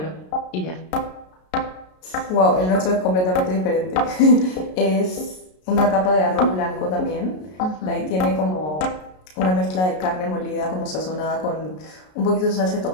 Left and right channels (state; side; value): late; right; 33 ms